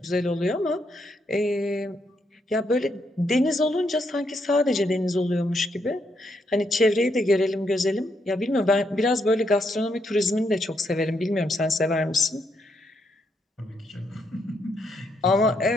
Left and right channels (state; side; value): normal; both; correlation 0.77